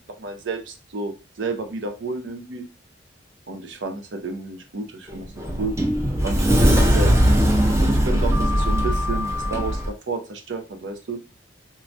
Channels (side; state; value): both; normal; correlation 0.83